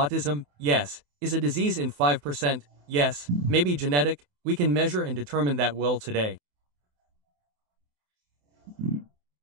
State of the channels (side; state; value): left; late; 28 ms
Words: yes, is a disease in 5%, yes, maybe genetic, we can measure and determine that well today.